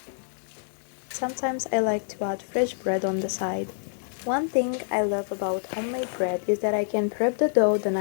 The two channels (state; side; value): silent; right; digital silence